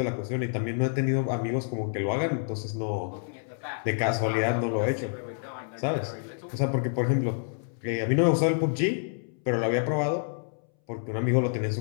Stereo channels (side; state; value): right; silent; 59 dB below the other